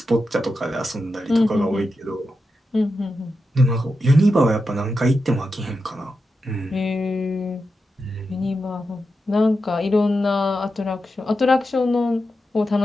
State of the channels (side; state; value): both; normal; correlation 0.89